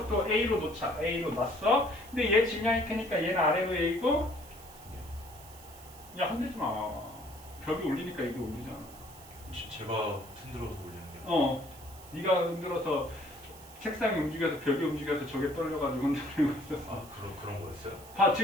A로 놓자. A로 놨어. 근데 얘 질량이 크니까 얘는 아래로 A고, 야, 흔들지 마. 벽이 울리니까 이게 울리잖아. 제가 흔들어서 올리는 게. 네가 흔들어서 책상이 움직여서 벽이 움직여서 저게 떨려가지고 흔들리고 있었어. 아 그런 거였어요? 봐,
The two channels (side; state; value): right; noise; hiss, 20 dB below the sound